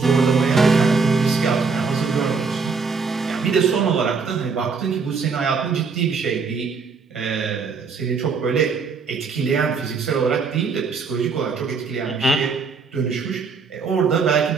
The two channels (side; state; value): left; quieter; 5.0 dB